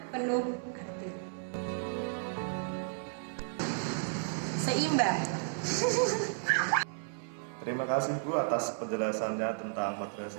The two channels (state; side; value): silent; left; 56 dB below the other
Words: penuh arti. Seimbang. Terima kasih Bu atas penjelasannya tentang